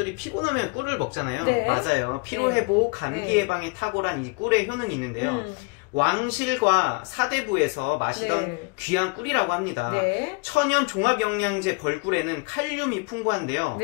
피곤하면 꿀을 먹잖아요. 네. 맞아요. 피로회복, 감기 예방에 탁월한 이 꿀의 효능이 있는데요. 왕실과 사대부에서 마시던 네. 귀한 꿀이라고 합니다. 네. 천연 종합영양제 벌꿀에는 칼륨이 풍부한데요.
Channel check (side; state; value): right; quieter; 30.4 dB